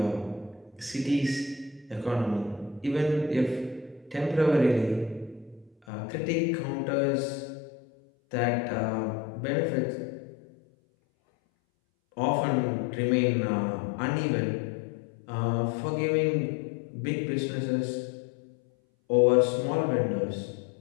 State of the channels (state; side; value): drops out; right; at 5.7 s